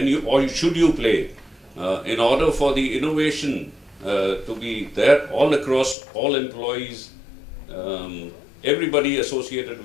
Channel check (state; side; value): drops out; right; at 6.0 s